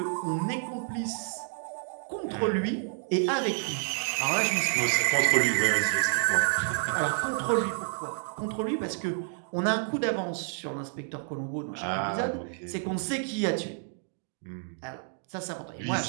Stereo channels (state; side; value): silent; left; 58 dB below the other